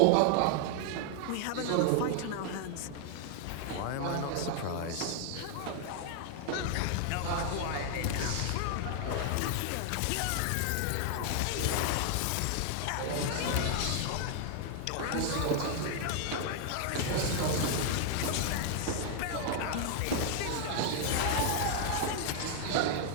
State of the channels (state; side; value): different; both; correlation 0.00